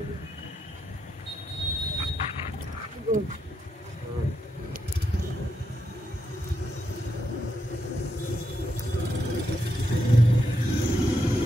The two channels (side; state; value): both; normal; correlation 0.82